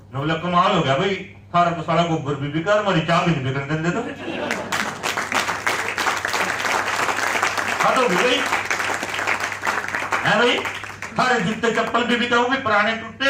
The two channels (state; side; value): identical; both; correlation 1.00